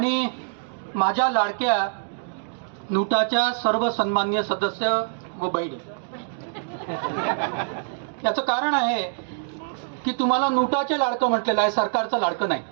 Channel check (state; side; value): silent; left; digital silence